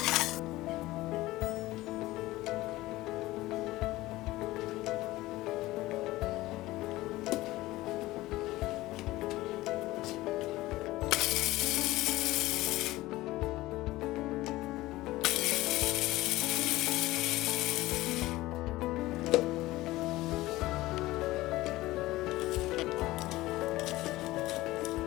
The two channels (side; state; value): right; quieter; 18.0 dB